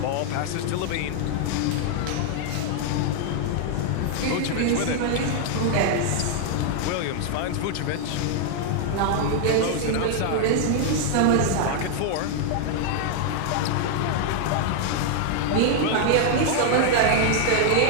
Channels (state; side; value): different; both; correlation 0.00